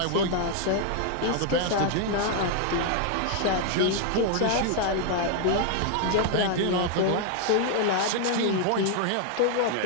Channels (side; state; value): both; different; correlation 0.00